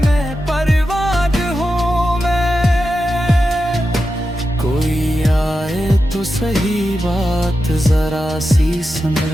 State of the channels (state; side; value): normal; both; correlation 0.90